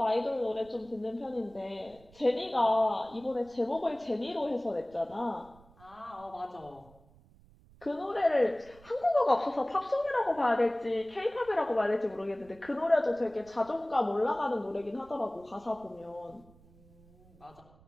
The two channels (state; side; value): noise; right; rumble, 26 dB below the sound